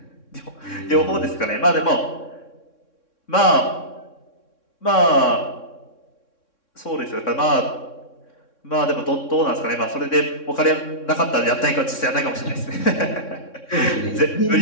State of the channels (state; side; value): late; right; 3.6 ms